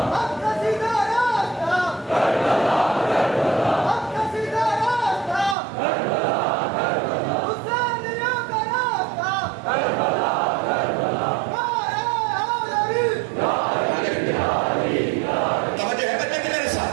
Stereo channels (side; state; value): left; drops out; at 5.6 s